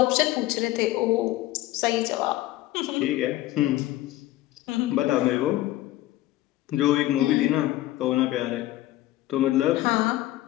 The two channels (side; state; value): right; quieter; 15.9 dB